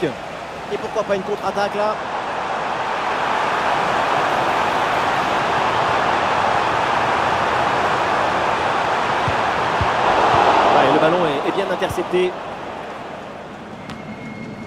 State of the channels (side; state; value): both; identical; correlation 1.00